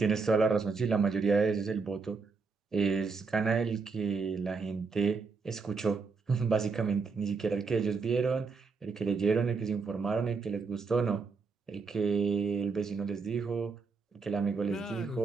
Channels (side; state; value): left; quieter; 4.7 dB